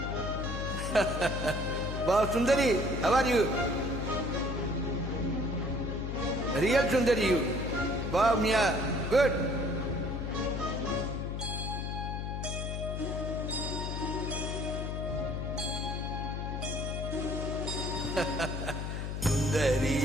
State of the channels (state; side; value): noise; left; hum, 3 dB below the sound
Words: Wow, Sundari, how are you? Real Sundari you. Wow, Mia, good. சுந்தரி